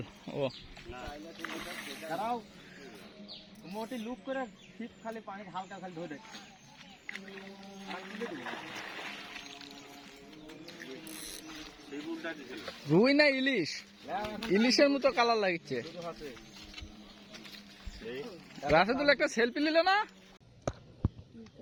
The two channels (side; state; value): both; identical; correlation 1.00